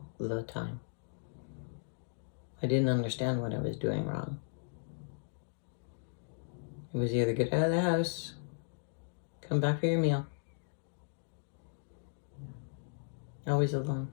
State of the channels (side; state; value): right; silent; digital silence